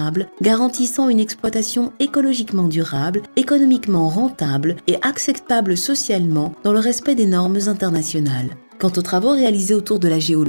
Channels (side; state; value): both; inverted; correlation -1.00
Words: garantissant une exploitation écologiquement durable, économiquement rentable et acceptable socialement dans le respect des normes internationales. Quant aux travaux réalisés autour de la